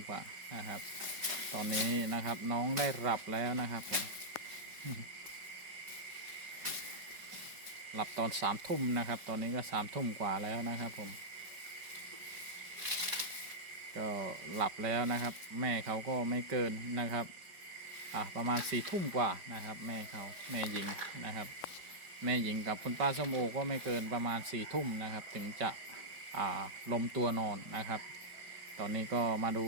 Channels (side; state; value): left; late; 5.2 ms